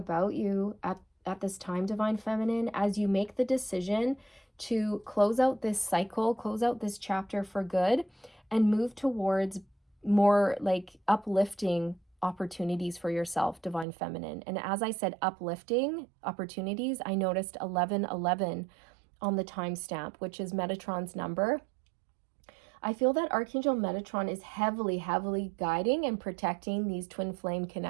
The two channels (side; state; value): left; drops out; at 13.9 s